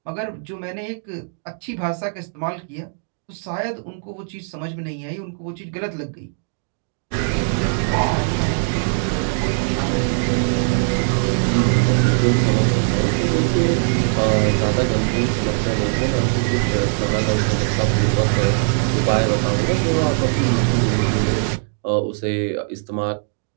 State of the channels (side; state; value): left; silent; digital silence